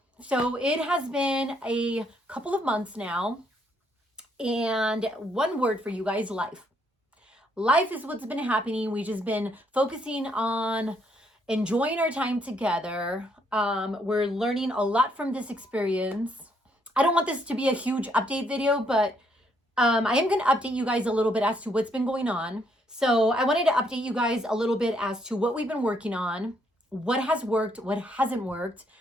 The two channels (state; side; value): normal; both; correlation 0.71